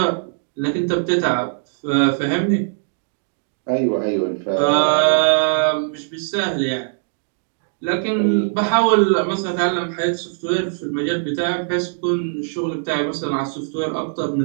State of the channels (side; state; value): left; silent; digital silence